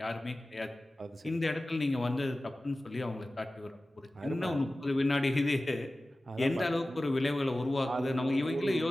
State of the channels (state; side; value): normal; both; correlation 0.96